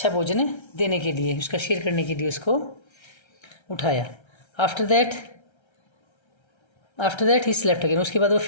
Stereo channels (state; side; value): late; right; 1.3 ms